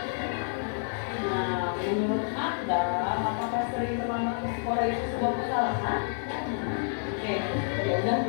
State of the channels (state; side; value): silent; right; digital silence